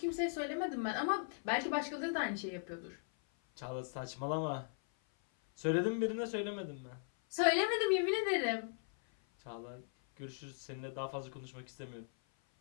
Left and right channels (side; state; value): right; silent; 52 dB below the other